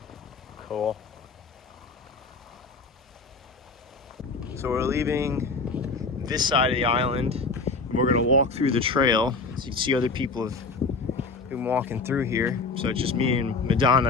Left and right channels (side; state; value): right; quieter; 4.1 dB